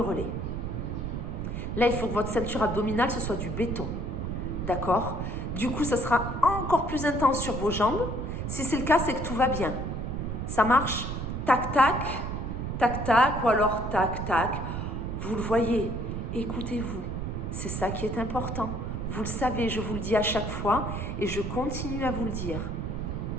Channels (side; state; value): right; noise; rumble, 3 dB below the sound